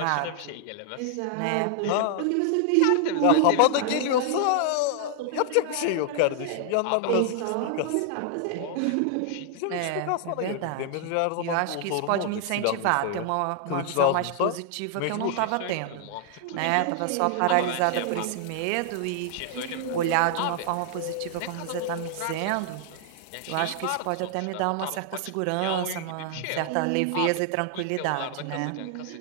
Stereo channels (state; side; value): different; both; correlation 0.00